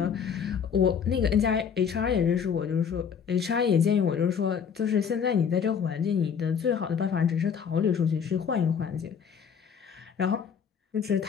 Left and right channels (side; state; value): right; quieter; 7.1 dB